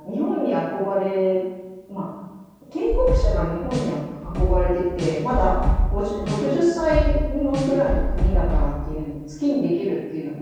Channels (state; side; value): identical; both; correlation 1.00